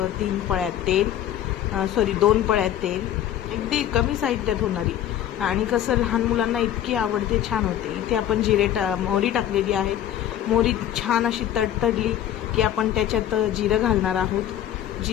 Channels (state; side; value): quieter; right; 11.3 dB